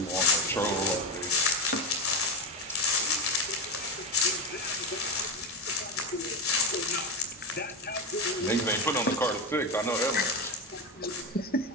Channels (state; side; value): normal; both; correlation 0.14